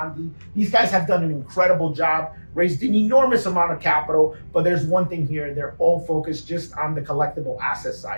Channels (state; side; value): inverted; both; correlation -1.00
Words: These guys have done an incredible job, raised an enormous amount of capital, but there's one thing here: they're all focused just on the collectible asset